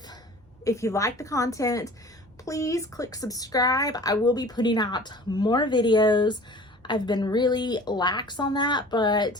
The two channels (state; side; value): normal; both; correlation 0.44